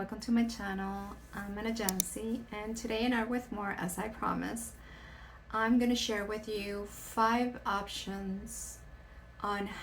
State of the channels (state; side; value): identical; both; correlation 1.00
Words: to my channel. I'm Anayansi, and today in Art with More, as I promised, I'm going to share with you 5 options on